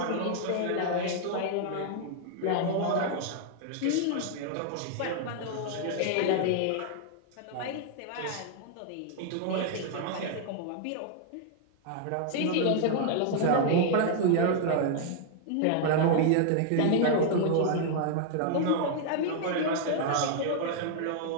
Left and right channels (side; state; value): both; different; correlation -0.01